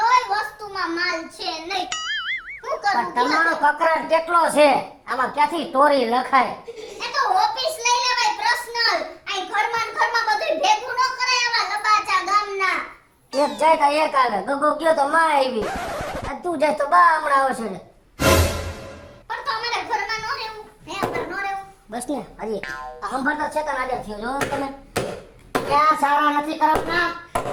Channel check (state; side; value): identical; both; correlation 1.00